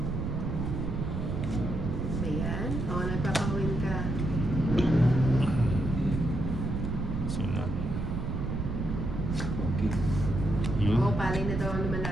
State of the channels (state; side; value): noise; right; rumble, 2 dB below the sound